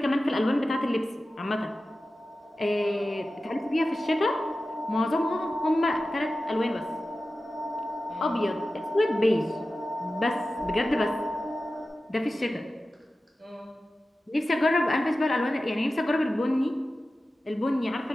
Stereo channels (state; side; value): normal; both; correlation 0.94